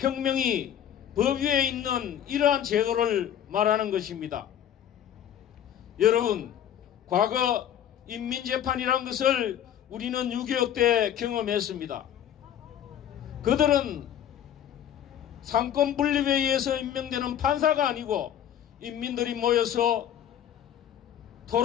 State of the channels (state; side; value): quieter; right; 10.1 dB